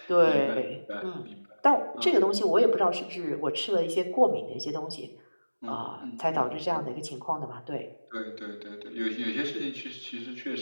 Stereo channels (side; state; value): both; inverted; correlation -1.00